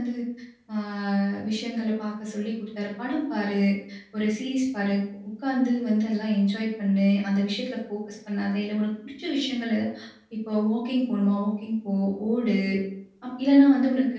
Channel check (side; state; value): both; identical; correlation 1.00